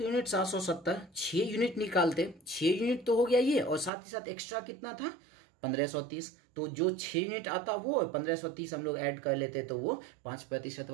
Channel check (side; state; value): left; drops out; at 3.9 s